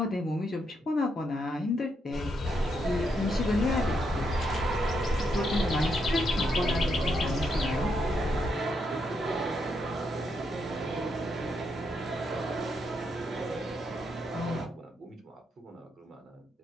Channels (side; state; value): both; normal; correlation 0.79